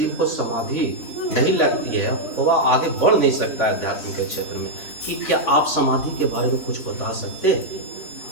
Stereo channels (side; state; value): right; late; 3.5 ms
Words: को समाधि नहीं लगती है, वह आगे बढ़ नहीं सकता है अध्यात्म के क्षेत्र में। कि क्या आप समाधि के बारे में कुछ बता सकते?